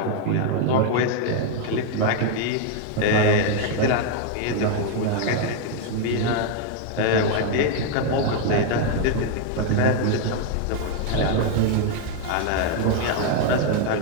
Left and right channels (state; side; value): different; both; correlation 0.01